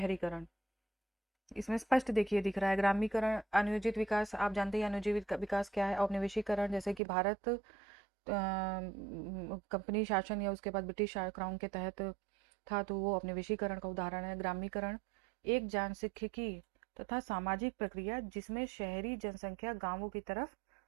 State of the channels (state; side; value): drops out; left; at 7.0 s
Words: इसमें स्पष्ट देखिए दिख रहा है ग्रामीकरण, अनियोजित विकास। आप जानते हैं अनियोजित विकास क्या है। औपनिवेशीकरण, जैसे कि भारत कंपनी शासन या उसके बाद ब्रिटिश क्राउन के तहत था, तो वो औपनिवेशीकरण का उदाहरण है। ग्रामीकरण एक जनसांख्यिकी तथा सामाजिक प्रक्रिया जिसमें शहरी जनसंख्या गांवों की तरफ